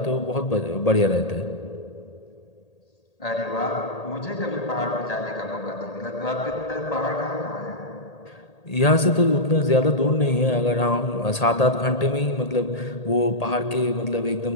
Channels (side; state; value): right; late; 1.8 ms